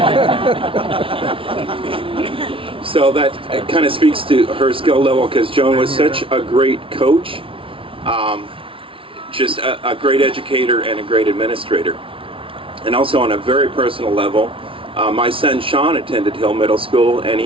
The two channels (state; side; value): late; left; 0.25 ms